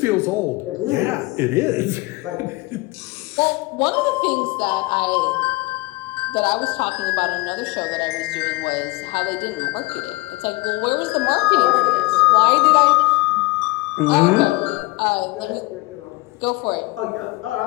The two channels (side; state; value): right; quieter; 23.1 dB